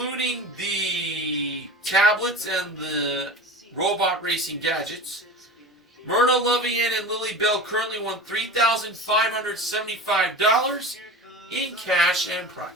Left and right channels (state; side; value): normal; both; correlation 0.33